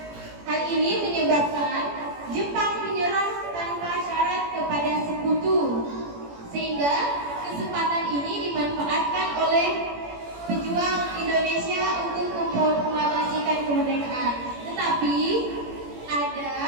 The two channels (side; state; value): left; late; 17 ms